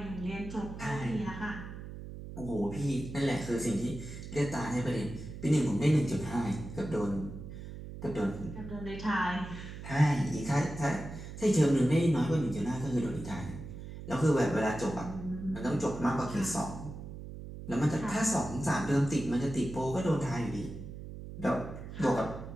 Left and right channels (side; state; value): right; noise; hum, 11 dB below the sound